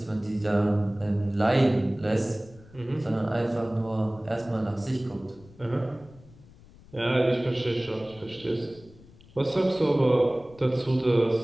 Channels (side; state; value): left; noise; rumble, 24 dB below the sound